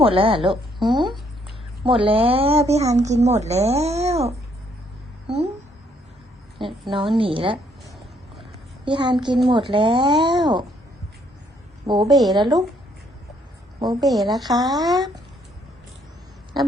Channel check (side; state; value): both; normal; correlation 0.68